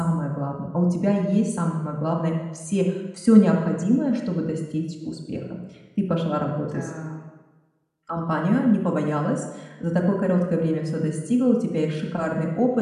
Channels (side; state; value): both; identical; correlation 1.00